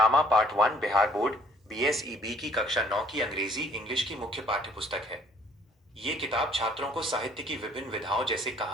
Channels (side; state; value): both; normal; correlation 0.60